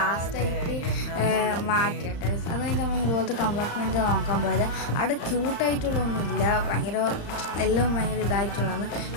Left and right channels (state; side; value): late; right; 35 ms